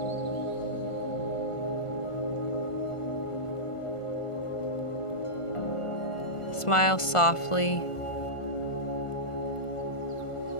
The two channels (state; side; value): late; right; 1.5 ms